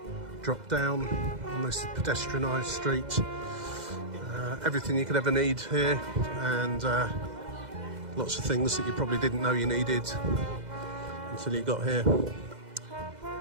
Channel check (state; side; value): late; left; 2.0 ms